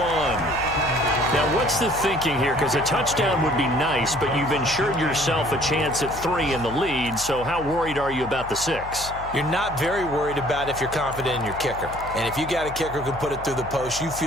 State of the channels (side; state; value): left; noise; hum, 13 dB below the sound